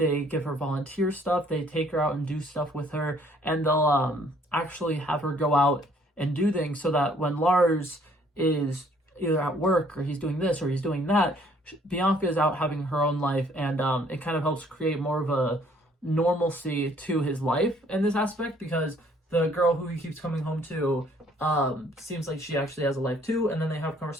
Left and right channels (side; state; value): both; normal; correlation 0.62